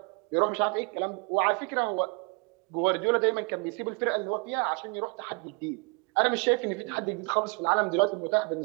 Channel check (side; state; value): left; quieter; 32.4 dB